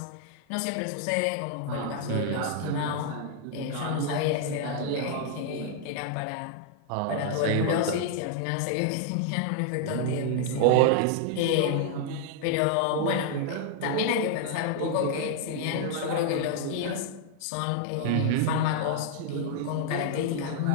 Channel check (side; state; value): both; different; correlation 0.00